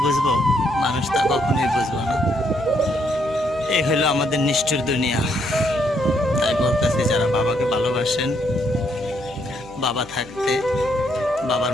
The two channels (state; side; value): noise; left; hum, 22 dB below the sound